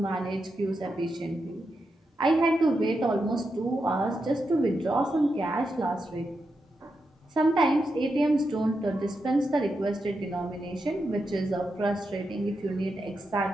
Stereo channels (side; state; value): both; normal; correlation 0.86